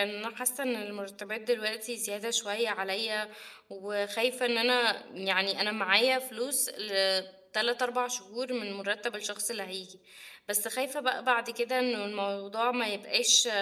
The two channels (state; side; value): identical; both; correlation 1.00